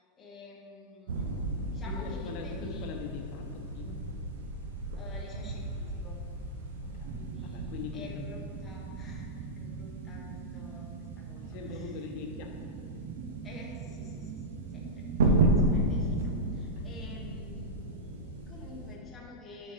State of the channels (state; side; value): normal; both; correlation -0.11